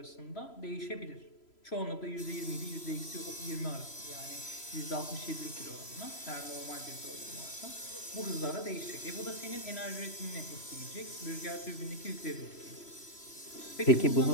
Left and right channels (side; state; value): right; late; 3.0 ms